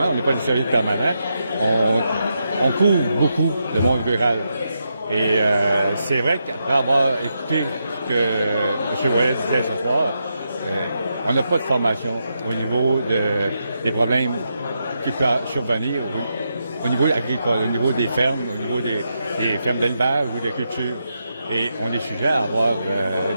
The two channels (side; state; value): both; inverted; correlation -0.84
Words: on n'est pas des services permanents, on couvre beaucoup le monde rural. Et c'est vrai qu'après avoir écouté ce que M. Ouellet disait ce soir, on n'a pas de formation au niveau des problèmes qui peuvent survenir au niveau agricole, au niveau des fermes, au niveau des fermes d'élevage ou de culture. Et on est sujet à avoir